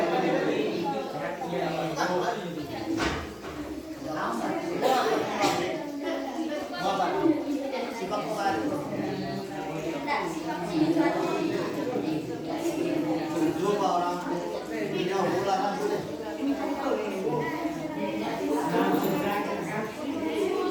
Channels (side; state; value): both; identical; correlation 1.00